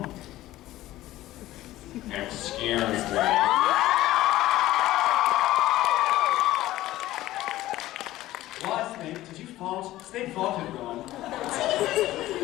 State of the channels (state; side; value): quieter; right; 15.7 dB